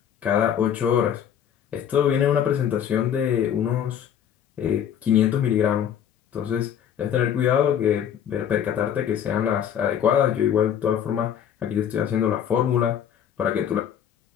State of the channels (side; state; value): right; quieter; 9.1 dB